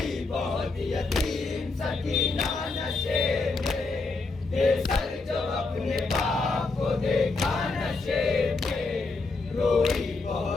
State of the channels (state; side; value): quieter; right; 3.8 dB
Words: بہت یتیم سکینہ نشیب میں بے سر جو اپنے باپ کو دیکھا نشیب میں روئی